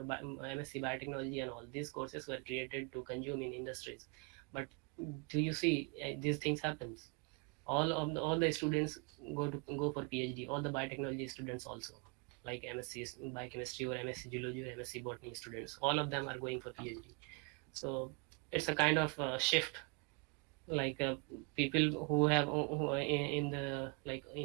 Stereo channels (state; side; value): quieter; left; 32.3 dB